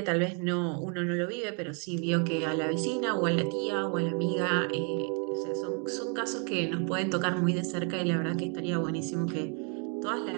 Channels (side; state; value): left; quieter; 38.1 dB